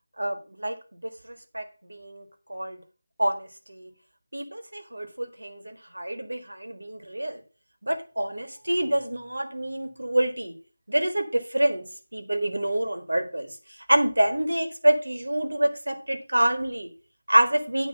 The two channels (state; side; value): inverted; both; correlation -0.99